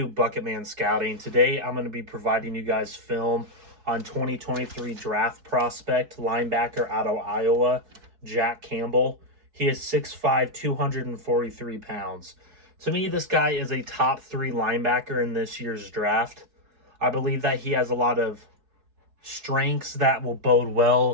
Bucketman Scouting. Today I'm going to be providing you guys film on 2023 draft prospect linebacker out of Iowa, Jack Campbell. He is 6'5", 243 pounds. To me, this guy is a top 3 linebacker in this year's draft. I believe that he has a lot of strengths that will bode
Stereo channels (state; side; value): late; left; 4.7 ms